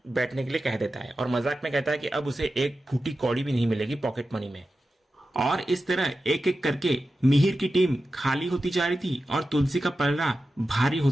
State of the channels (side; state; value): both; normal; correlation 0.92